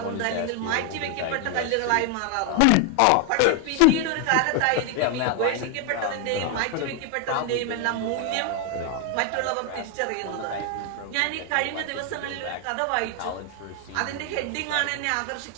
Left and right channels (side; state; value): both; different; correlation 0.00